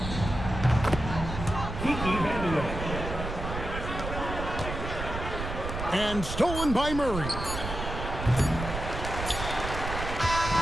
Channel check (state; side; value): noise; right; rumble, 6 dB below the sound